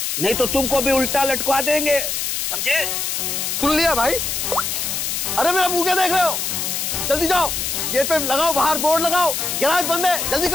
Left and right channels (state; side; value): noise; left; hiss, 1 dB below the sound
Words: नहीं तो तुमको भी उल्टा लटका देंगे, समझे? सुन लिया भाई? अरे मेरा मुंह क्या देख रहे हो? जल्दी जाओ, गेट पे लगाओ, बाहर बोर्ड लगाओ, गैराज बंद है, जल्दी